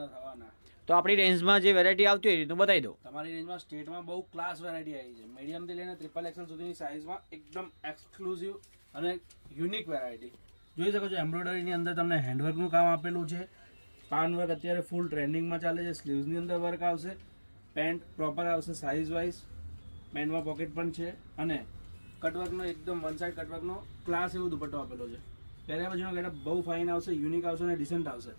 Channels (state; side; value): inverted; both; correlation -1.00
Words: થવાના. તો આપણી રેન્જમાં જે વેરાયટી આવતી હોય એ રીતનું બતાવી દો. તમારી રેન્જમાં સ્ટેટમાં બહુ ક્લાસ વેરાયટી આવી છે. મીડિયમ થી લઈને ટ્રિપલ એક્સેલ સુધીની સાઇઝમાં એકદમ એક્સક્લુઝિવ અને યુનિક વેરાયટી જોઈ શકો છો. એમ્બ્રોઇડરીની અંદર તમને હેન્ડવર્કનું કામ આપેલું છે. પાન વર્ક અત્યારે ફૂલ ટ્રેન્ડિંગમાં ચાલે છે. સ્લીવ્સની અંદર વર્ક આવશે. પેન્ટ પ્રોપર આવશે સાઇઝ વાઇઝ. પેન્ટમાં પોકેટ પણ છે અને કટવર્કનો એકદમ વન સાઇડ કટવર્કનો ક્લાસ એવો દુપટ્ટો આપેલો છે. પહેર્યા પછીનો ગેટઅપ બહુ ફાઇન આવશે, યુનિક આવશે અને ડિસન્ટ આવશે.